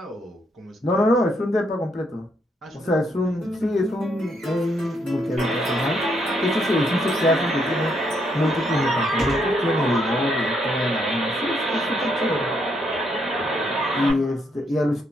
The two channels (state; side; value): normal; both; correlation 0.75